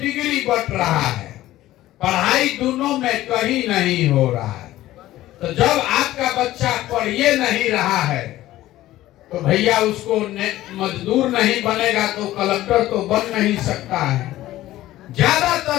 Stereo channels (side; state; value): right; quieter; 15.3 dB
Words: बट रहा है। पढ़ाई दोनों में कहीं नहीं हो रहा है। तो जब आपका बच्चा पढ़िए नहीं रहा है तो भैया उसको मजदूर नहीं बनेगा तो कलेक्टर तो बन नहीं सकता है।